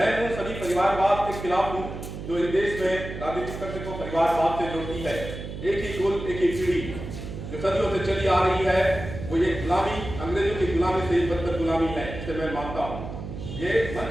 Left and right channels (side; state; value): right; noise; hum, 9 dB below the sound